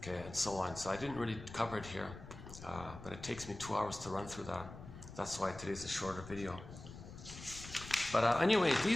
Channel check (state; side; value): noise; left; rumble, 13 dB below the sound